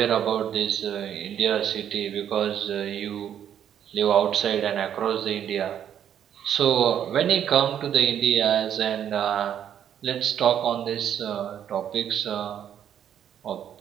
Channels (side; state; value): left; quieter; 9.6 dB